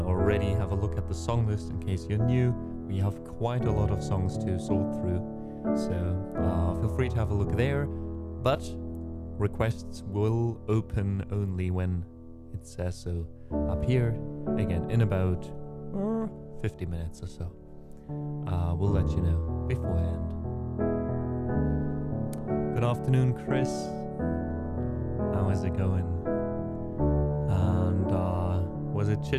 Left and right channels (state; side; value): identical; both; correlation 1.00